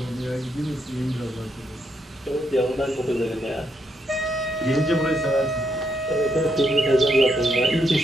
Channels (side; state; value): both; normal; correlation 0.78